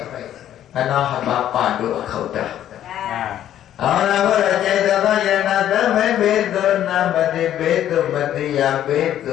အနာဟဘာပါဒုအခုတ်တာအော်လာဘရကျေသောယရနာသမေဘေတုနာမတိဘေတုမတိယဘေတ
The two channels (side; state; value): right; quieter; 11.4 dB